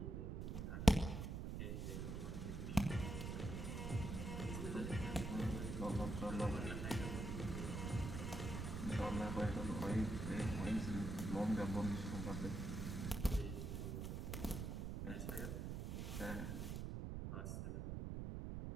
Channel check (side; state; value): right; noise; rumble, 3 dB below the sound